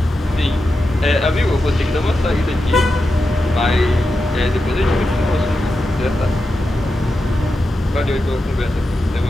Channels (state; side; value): normal; both; correlation 0.89